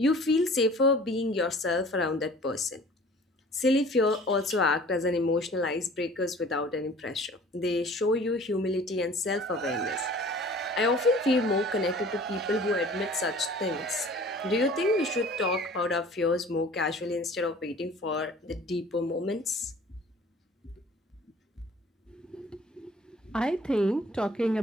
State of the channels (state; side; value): normal; both; correlation 0.48